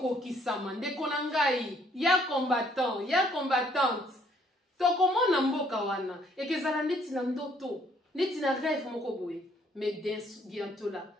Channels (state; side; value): normal; both; correlation 0.65